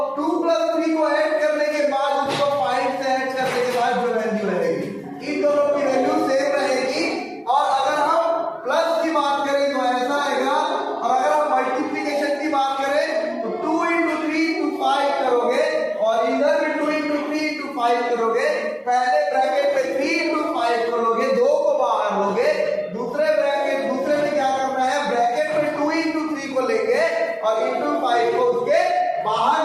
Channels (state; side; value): identical; both; correlation 1.00